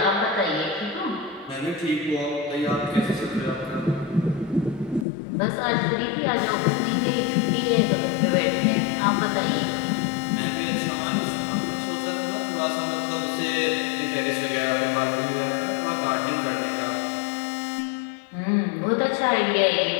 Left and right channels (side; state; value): right; drops out; at 5.1 s